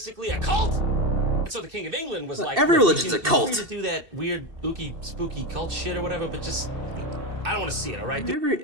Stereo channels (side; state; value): left; late; 2.7 ms